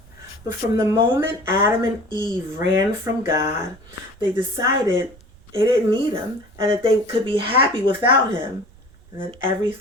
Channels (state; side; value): noise; right; rumble, 25 dB below the sound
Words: But from the moment Adam and Eve ran from God, they decided they didn't need him and that they could be happy without him. And then